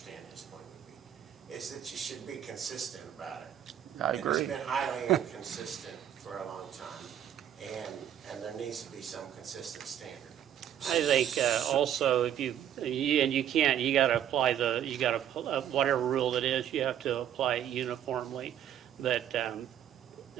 his point would be, is that you should be consistent about it. I And agree. it's been highly inconsistent for a long time, and there needs to be some consistent standard. I think also if you gotta apply whatever rule it is, you have to apply it uniformly. But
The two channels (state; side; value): quieter; left; 10.3 dB